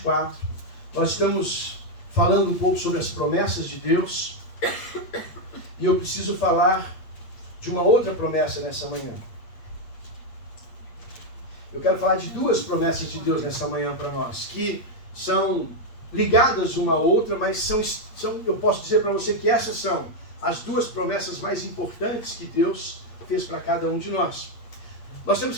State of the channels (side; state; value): right; late; 8.5 ms